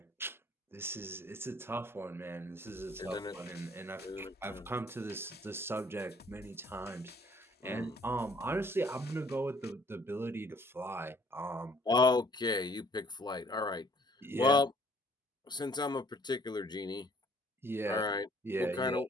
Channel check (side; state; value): both; normal; correlation 0.59